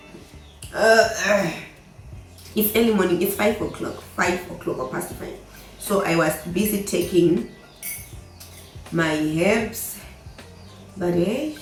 It's early morning. It's 5 o'clock. 5 o'clock or past 5. So I was busy taking my herbs, but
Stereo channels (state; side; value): identical; both; correlation 1.00